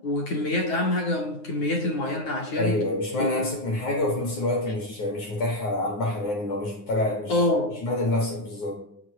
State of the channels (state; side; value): late; right; 9.6 ms